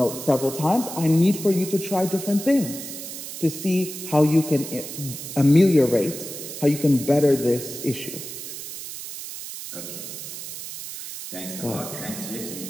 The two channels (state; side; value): noise; right; hiss, 9 dB below the sound